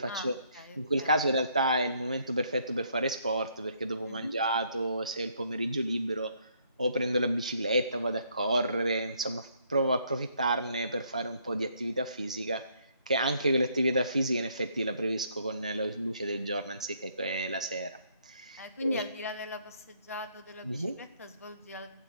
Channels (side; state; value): both; inverted; correlation -0.69